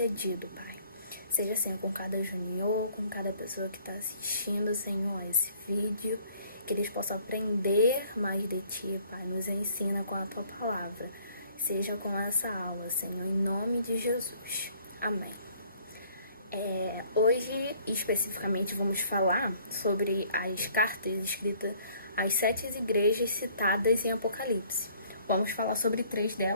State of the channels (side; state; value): both; inverted; correlation -0.59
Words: Pai. Seja assim com cada junior, com cada pessoa que está assistindo, Senhor, a esse vídeo, que eles possam aprender mais de Ti, Pai. Nos ensina com a Tua palavra. Seja com essa aula, Senhor, em nome de Jesus. Amém. Hoje, especificamente, vamos falar sobre as cartas escritas às 7 igrejas citadas em Apocalipse. Vamos falar sobre 3